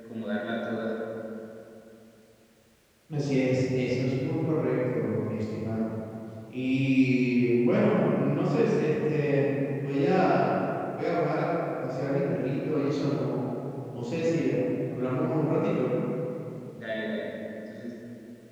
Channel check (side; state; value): both; identical; correlation 1.00